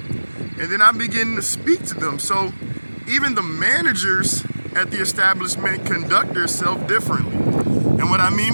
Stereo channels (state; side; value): inverted; both; correlation -1.00